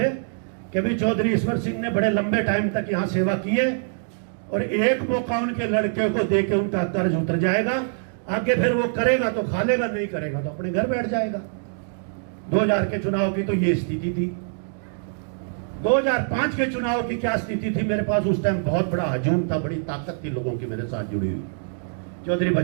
कि भाई चौधरी ईश्वर सिंह ने बड़े लंबे टाइम तक यहां सेवा की है और एक मौका उनके लड़के को देके उनका कर्ज उतर जाएगा, आगे फिर वो करेगा तो खा लेगा, नहीं करेगा तो अपने घर बैठ जाएगा। 2000 के चुनाव की तो ये स्थिति थी। 2005 के चुनाव की क्या स्थिति थी, मेरे पास उस टाइम बहुत बड़ा हजूम था, बड़ी ताकत थी लोगों की मेरे साथ जुड़ी हुई। चौधरी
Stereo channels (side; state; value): left; silent; digital silence